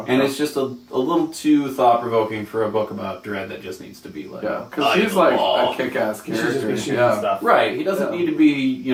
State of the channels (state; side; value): identical; both; correlation 1.00